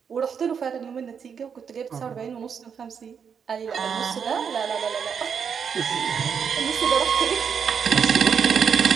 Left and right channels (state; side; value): quieter; left; 6.9 dB